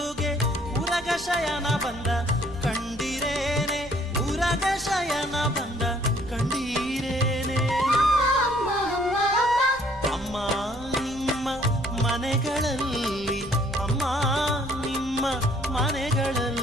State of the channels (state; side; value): noise; right; rumble, 18 dB below the sound